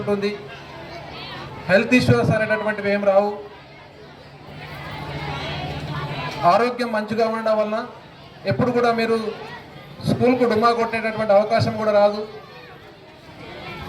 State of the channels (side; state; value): both; identical; correlation 1.00